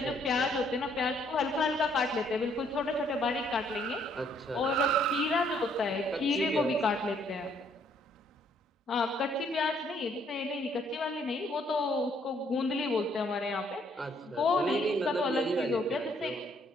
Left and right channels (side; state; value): both; normal; correlation 0.67